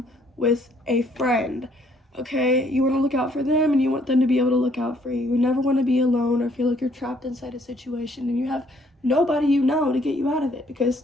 with a friend. Okay, you want to look out for them and you want them to be able to look out for you. You never want to be alone or feel like you're trapped inside a situation and you have nobody you know to get you out of it. Because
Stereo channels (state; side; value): normal; both; correlation 0.65